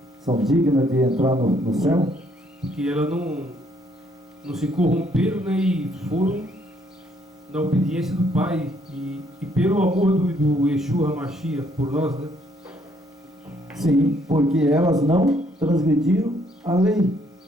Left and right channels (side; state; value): both; normal; correlation 0.68